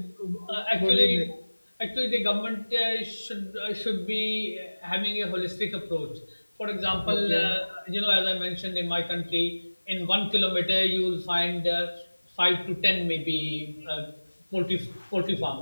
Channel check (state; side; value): inverted; both; correlation -1.00